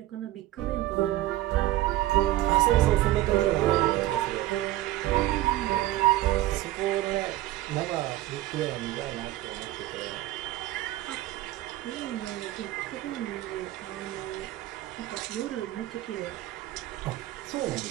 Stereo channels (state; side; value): quieter; left; 15.7 dB